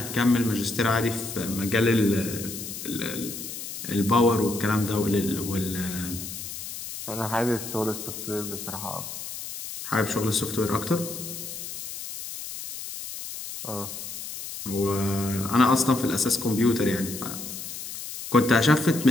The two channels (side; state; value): left; noise; hiss, 9 dB below the sound